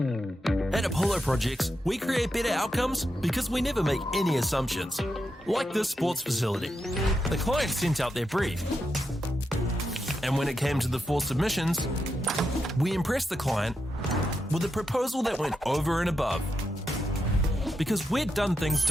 At Apollo Projects, we create better outcomes because we never make any assumptions. Like this sports facility. The client sent out their brief. And when it came to the 4 submissions, we impressed the client with a proposal that went over and above. Because we'd done things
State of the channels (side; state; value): both; normal; correlation 0.85